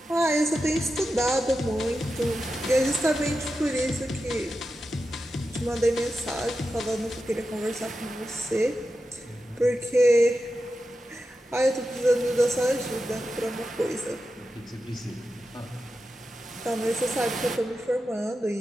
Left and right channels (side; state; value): both; normal; correlation 0.91